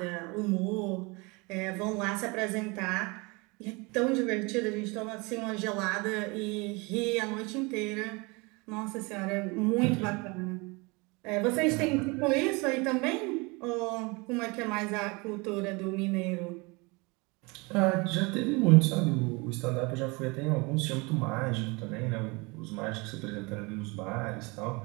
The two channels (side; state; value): left; quieter; 27.2 dB